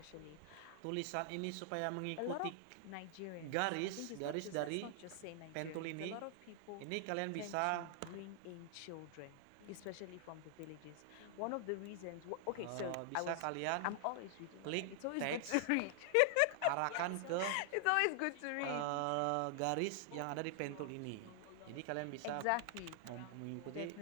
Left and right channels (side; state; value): both; different; correlation 0.00